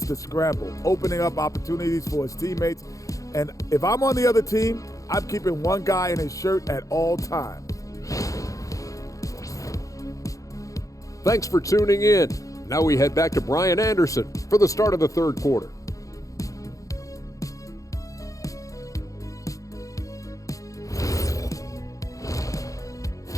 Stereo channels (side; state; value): right; late; 0.16 ms